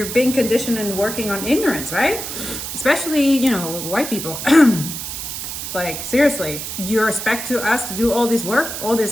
being conditioned and working on ignorance, right? Especially, you know, white people. Like, seriously, you expect us to do all this work, all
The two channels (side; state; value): right; noise; hiss, 6 dB below the sound